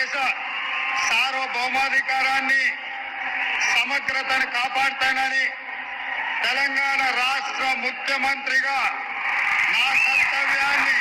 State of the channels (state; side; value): identical; both; correlation 1.00